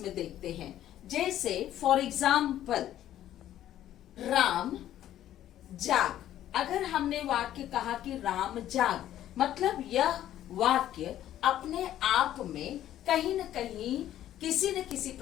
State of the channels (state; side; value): quieter; right; 12.3 dB